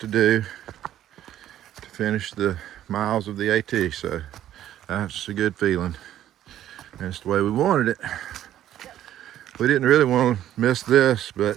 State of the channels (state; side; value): quieter; left; 12.0 dB